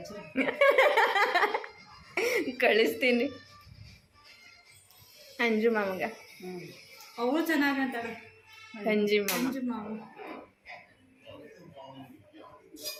ಕಳಿಸ್ತೀನಿ ಅಂಜು ಮಾಮಗ. ಅವಳು ಚೆನ್ನಾಗಂತಾಳೆ. ಅಂಜಿ ಮಾಮ.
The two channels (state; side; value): identical; both; correlation 1.00